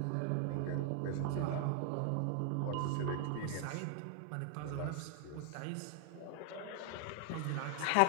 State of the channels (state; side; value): different; both; correlation 0.00